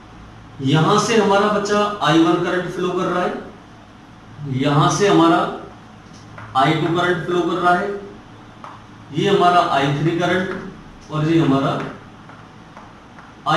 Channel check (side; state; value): both; identical; correlation 1.00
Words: यहां से हमारा बच्चा I1 करंट फ्लो कर रहा है, यहां से हमारा I2 करंट फ्लो कर रहा है, ये हमारा I3 करंट, और ये हमारा